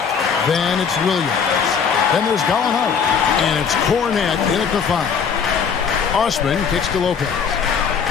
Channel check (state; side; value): quieter; right; 6.6 dB